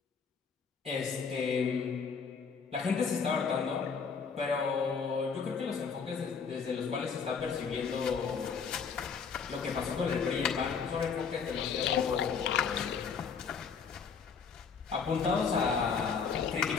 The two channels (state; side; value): quieter; right; 5.9 dB